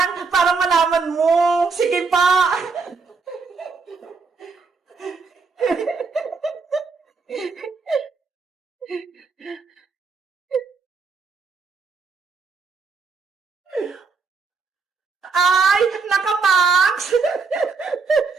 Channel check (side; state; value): left; quieter; 4.7 dB